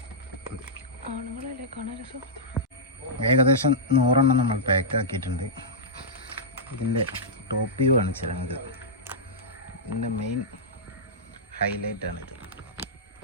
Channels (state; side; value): normal; both; correlation -0.11